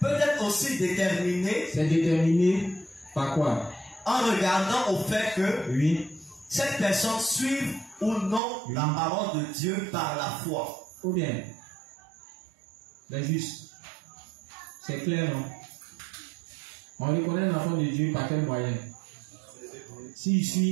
être aussi déterminé. C'est déterminé par quoi? En regardant au fait que oui, cette personne suive ou non la parole de Dieu par la foi. Ou bien, les justes. C'est clair, non? On reconnaît l'enfant de Dieu par quel moyen? S'il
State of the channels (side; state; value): left; drops out; at 8.4 s